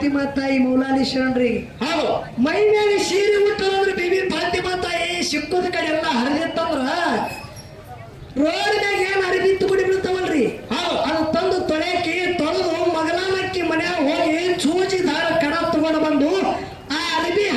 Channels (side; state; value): both; identical; correlation 1.00